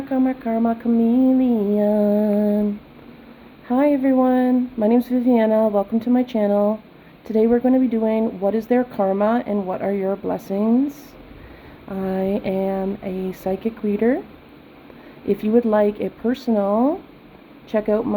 chameleon. Hi everyone, my name is Viviana. Welcome to my channel. Today we're going to be doing what is their karma and what are your blessings. I am a psychic reader. If you would like a personal, check out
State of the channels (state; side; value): identical; both; correlation 1.00